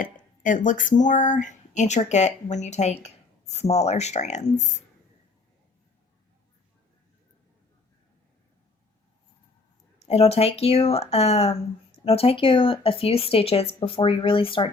it looks more intricate when you take smaller strands. It'll take you a few stitches before you really start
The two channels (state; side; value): quieter; right; 3.7 dB